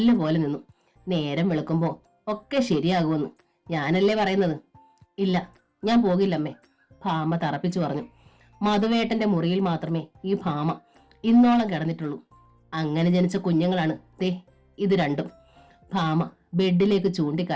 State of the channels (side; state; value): both; identical; correlation 1.00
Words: പോലെ നിന്നു. നേരം വെളുക്കുമ്പോ ഒക്കെ ശരിയാകുമെന്ന് ഞാനല്ലേ പറയുന്നത്? ഇല്ല, ഞാൻ പോകില്ലമ്മേ, ഭാമ തറപ്പിച്ചു പറഞ്ഞു. മധുവേട്ടന്റെ മുറിയിൽ മാത്രമേ ഈ ഭാമ ഇന്നോളം കിടന്നിട്ടുള്ളൂ. അങ്ങനെ ജനിച്ച കുഞ്ഞുങ്ങളാണ് ദേ ഇത് രണ്ടും. ഭാമ ബെഡിലേക്ക്